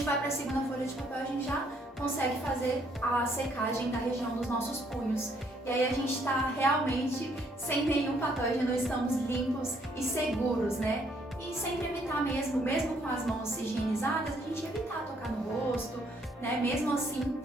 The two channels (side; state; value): both; normal; correlation 0.68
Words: vai para a segunda folha de papel, a gente já consegue fazer a secagem da região dos nossos punhos. E aí a gente está realmente sem nenhum patógeno, estamos limpos e seguros, né? E sempre evitar mesmo com as mãos higienizadas, a gente evitar tocar no rosto, né? Mesmo assim,